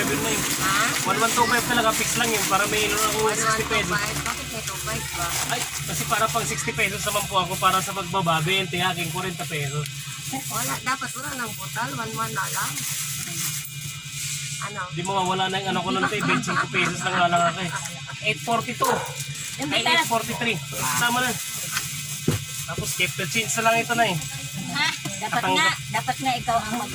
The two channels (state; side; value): identical; both; correlation 1.00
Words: yun na yun. 1125 talaga, fix lang yun. Para may ilo ako 60 pesos. Bakit may 25 ba? Ay, kasi para pang 60 pesos naman po ako para sa pagbaba, 20, aking 40 pesos. Wala, dapat wala ng putal. 1-1 na lang. Ano? Di mo mawala na yung ano ko nun ito, 25 pesos lang lang ako eh. 842. Ay, 843. Tama na. Tapos keep the change na lang ito na eh. Ha? Dapat nga ikaw ang